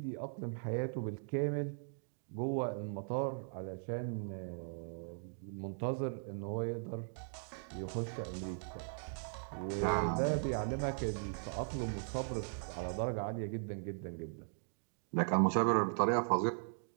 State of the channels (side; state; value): left; silent; digital silence